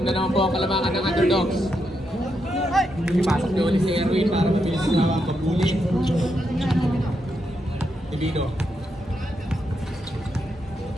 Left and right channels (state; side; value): normal; both; correlation 0.82